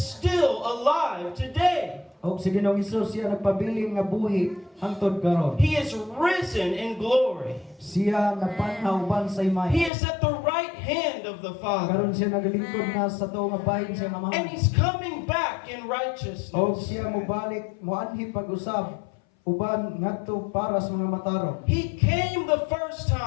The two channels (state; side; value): drops out; right; at 9.9 s